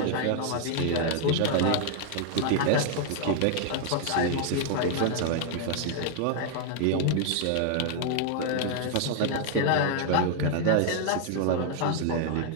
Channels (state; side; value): different; both; correlation 0.00